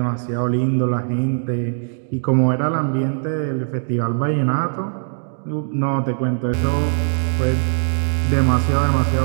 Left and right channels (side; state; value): left; silent; digital silence